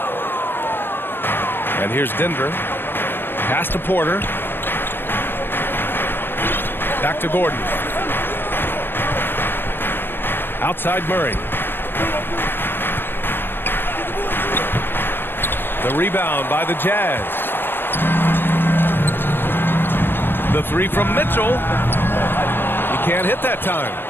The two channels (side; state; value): right; late; 0.098 ms